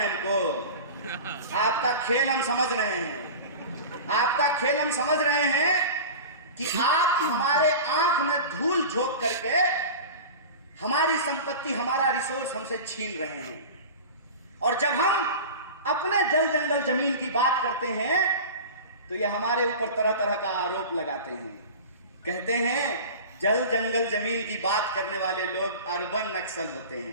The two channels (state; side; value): inverted; both; correlation -0.33